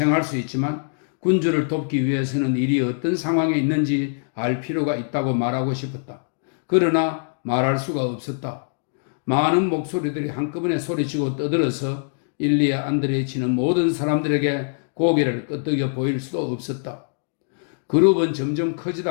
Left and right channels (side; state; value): right; silent; digital silence